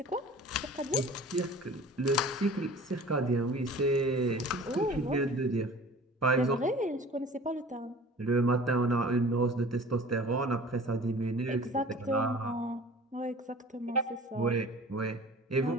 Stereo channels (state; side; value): normal; both; correlation 0.44